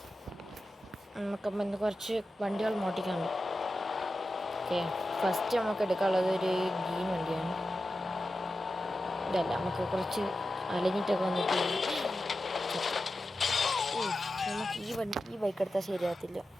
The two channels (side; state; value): both; normal; correlation 0.92